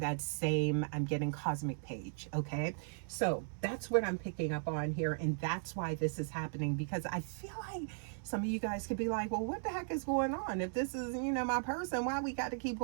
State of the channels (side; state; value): left; silent; digital silence